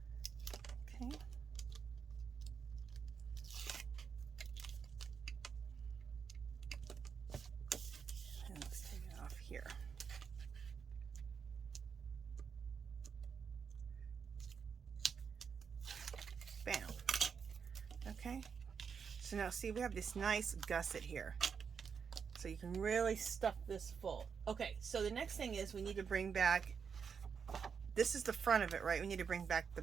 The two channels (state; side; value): quieter; left; 6.4 dB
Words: Okay. And let's take it off here. Bam. Okay. So now see, we have this nice gusset here. So you can really stuff this full. Okay, so the next thing is we need to bring back, this is the front of it, right? We need to bring back the